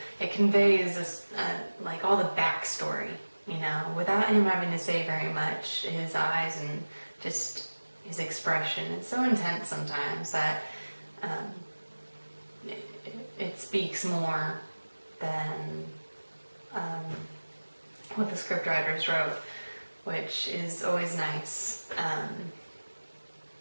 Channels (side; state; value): both; inverted; correlation -1.00